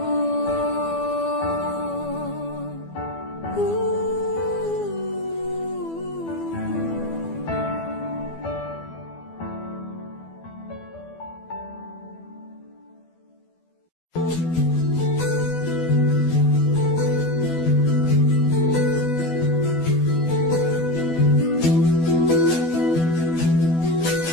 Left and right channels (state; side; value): late; right; 12 ms